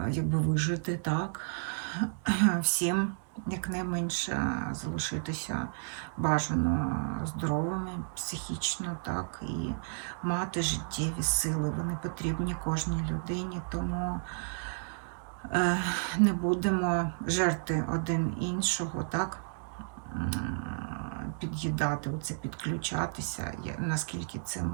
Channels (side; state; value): left; silent; digital silence